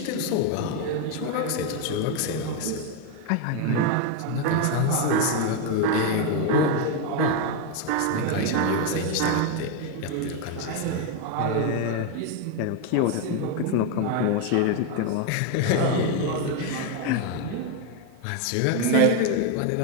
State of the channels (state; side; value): different; both; correlation 0.01